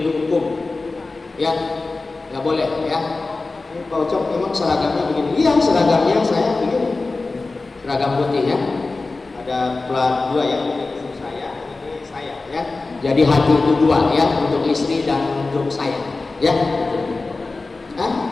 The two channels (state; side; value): quieter; right; 3.6 dB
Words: hukum. Ya, nggak boleh ya. Pak Ucok memang seragamnya begini. Iya, seragamnya saya begini. Seragam putih ya. Ada plat 2 ya. Ini saya ya. Jadi hati itu 2 ya, untuk istri dan untuk saya. Ya.